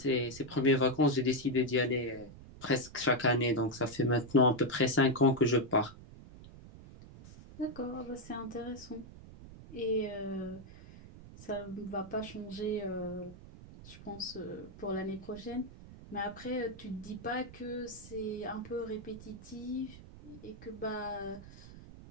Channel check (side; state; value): right; noise; rumble, 17 dB below the sound